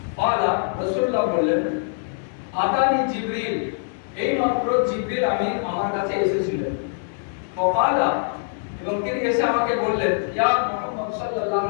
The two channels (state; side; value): silent; right; digital silence